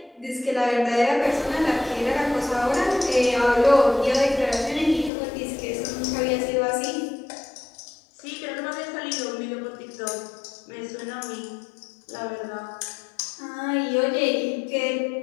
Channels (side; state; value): right; drops out; at 5.1 s